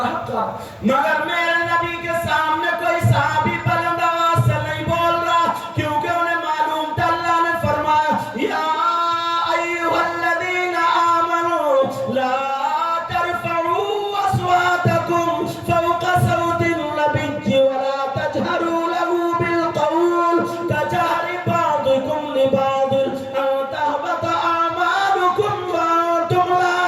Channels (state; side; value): identical; both; correlation 1.00